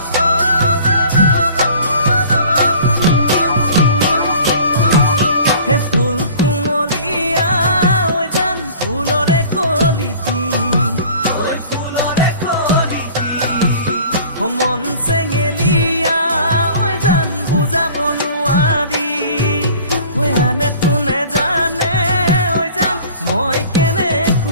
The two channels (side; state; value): both; inverted; correlation -0.46